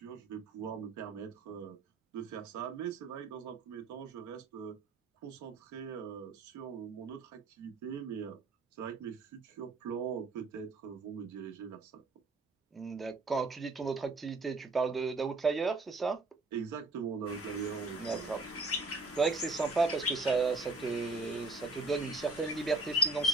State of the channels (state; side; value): quieter; left; 3.1 dB